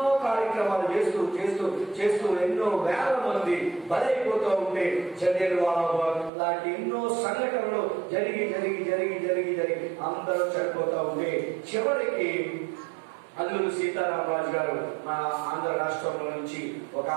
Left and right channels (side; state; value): left; drops out; at 6.3 s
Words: కార్యక్రమాలు చేస్తూ ఎన్నో వేల మంది బలైపోతూ ఉంటే జలియన్వాలా లాంటి ఎన్నో సంఘటనలు జరిగి అందరూ చనిపోతూ ఉంటే చివరికి అల్లూరి సీతారామరాజు గారు మన ఆంధ్ర రాష్ట్రంలో నుంచి ఒక